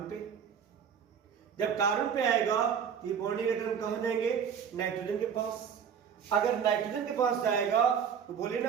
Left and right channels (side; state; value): left; quieter; 7.5 dB